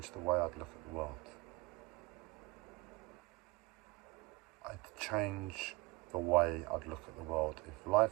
the way I'd look at the world. I'd change the way I'd look at the world. If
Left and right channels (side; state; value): left; quieter; 23.2 dB